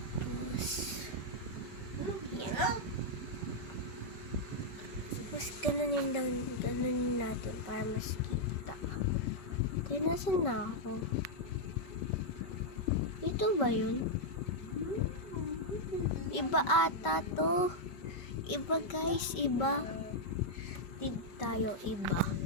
yan. Tapos ganunin natin para mas kita. Kaya nasan na ako? Ito ba yun? Iba ata to. Iba guys, iba. Tip tayo, iba.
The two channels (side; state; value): right; late; 5.2 ms